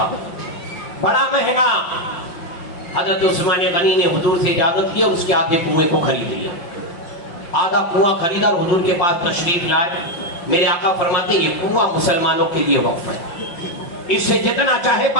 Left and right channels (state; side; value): late; right; 5.7 ms